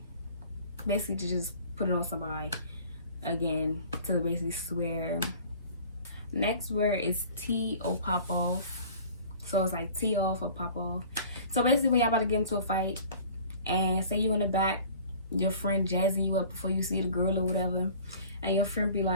Basically to just put it on somebody, again, to basically swear. Next word is tee or pop off. So it's like tee off or pop off. So basically when y'all about to get into a fight and say you in the back, your friend jazzing you up before you see the girl or whatever, and your friend be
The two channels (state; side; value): inverted; both; correlation -0.47